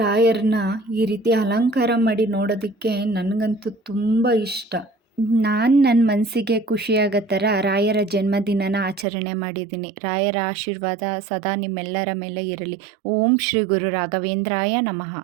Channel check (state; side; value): drops out; left; at 9.1 s